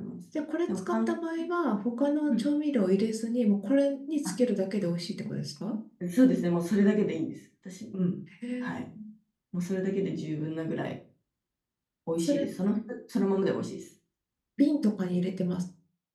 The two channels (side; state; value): both; identical; correlation 1.00